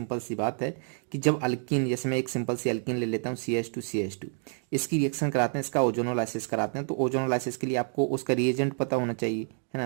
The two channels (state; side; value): silent; left; 55 dB below the other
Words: सी बात है कि जब अल्कीन, जैसे मैं एक सिंपल सी अल्कीन ले लेता हूँ CH2 इसकी रिएक्शन कराते हैं, इसका ओजोनोलाइसिस कराते हैं। तो ओजोनोलाइसिस के लिए आपको उसका रिएजेंट पता होना चाहिए, है